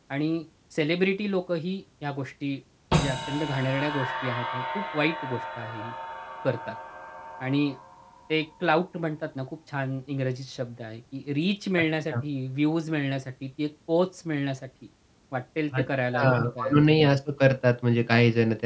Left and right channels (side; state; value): both; identical; correlation 1.00